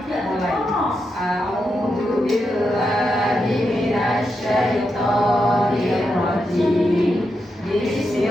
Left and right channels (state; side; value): normal; both; correlation 0.85